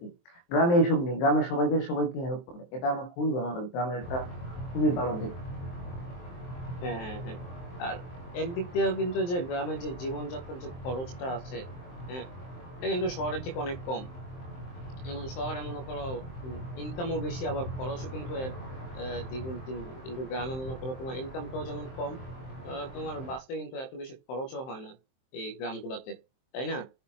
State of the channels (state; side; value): late; right; 23 ms